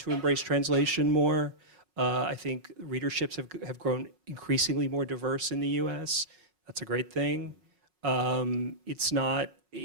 to embrace translation more. I think readerships have grown increasingly more diverse in the U.S. That's a great thing. It's not,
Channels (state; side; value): late; left; 5.4 ms